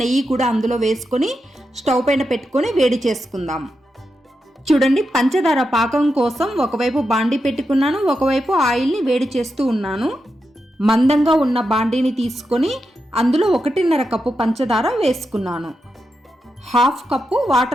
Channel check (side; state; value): both; normal; correlation 0.87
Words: నెయ్యి కూడా అందులో వేసుకొని స్టవ్ పైన పెట్టుకొని వేడి చేసుకుందాం. చూడండి, పంచదార పాకం కోసం ఒకవైపు బాండీ పెట్టుకున్నాను, ఒకవైపు ఆయిల్ని వేడి చేస్తూ ఉన్నాను. మందంగా ఉన్న బాండీని తీసుకొని అందులో 1.5 కప్పు పంచదార వేసుకున్నాను. 1/2 కప్పు